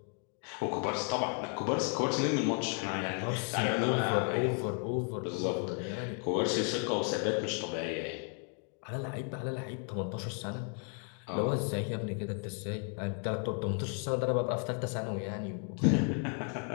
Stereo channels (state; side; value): quieter; right; 39.3 dB